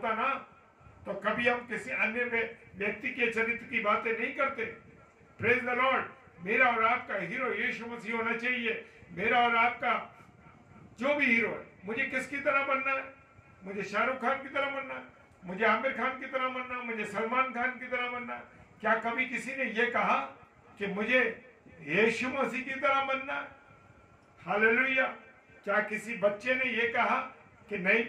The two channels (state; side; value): identical; both; correlation 1.00